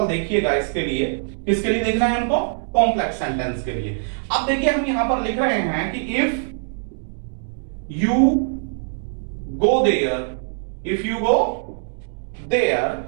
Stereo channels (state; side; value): silent; left; digital silence